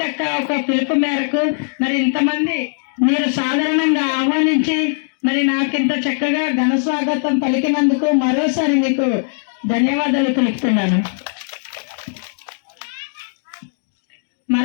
ఒక పిలుపు మేరకు మరి ఇంతమంది మీరు సాధారణంగా ఆహ్వానించి మరి నాకింత చక్కగా ఘన స్వాగతం పలికినందుకు మరోసారి మీకు ధన్యవాదాలు తెలుపుతున్నాను.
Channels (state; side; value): silent; right; 67 dB below the other